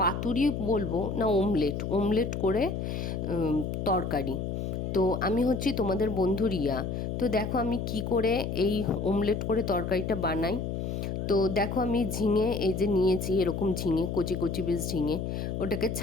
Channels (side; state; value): left; noise; hum, 3 dB below the sound